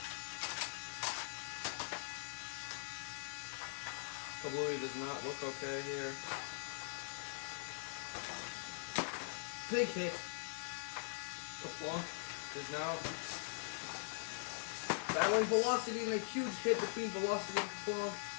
Kablooey does not look okay here. Big hit. Kerplunk is now battling Velocity, and a huge hit between Velocity and Kerplunk.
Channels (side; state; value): right; silent; digital silence